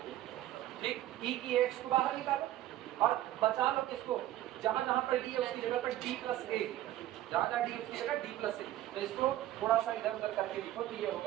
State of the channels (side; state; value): left; quieter; 14.1 dB